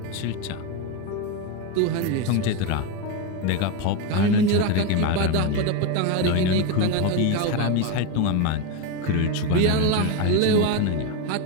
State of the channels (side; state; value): both; different; correlation 0.03